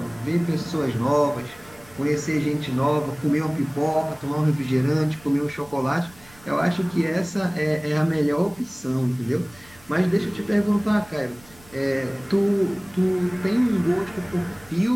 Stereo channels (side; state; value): right; noise; rumble, 25 dB below the sound